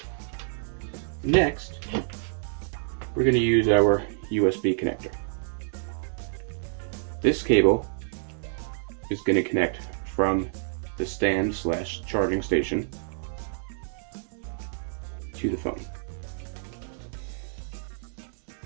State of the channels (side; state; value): left; silent; digital silence